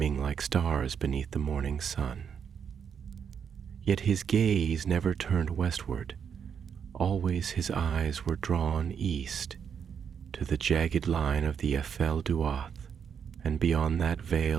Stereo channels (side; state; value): left; quieter; 7.3 dB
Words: like stars beneath the morning sun. Yet his gaze never turned westward. Always his eyes were drawn east, to the jagged line of the Ephel Duath, and beyond that